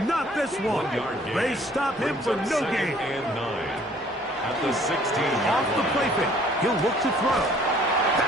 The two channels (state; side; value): normal; both; correlation 0.57